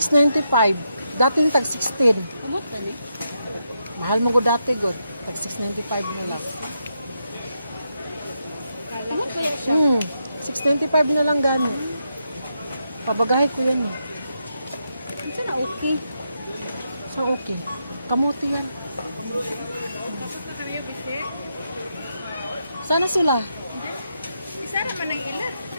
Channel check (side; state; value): both; inverted; correlation -0.83